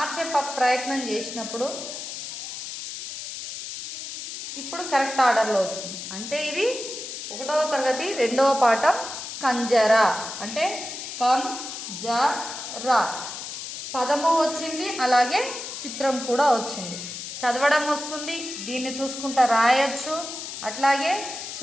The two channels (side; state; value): left; noise; hiss, 8 dB below the sound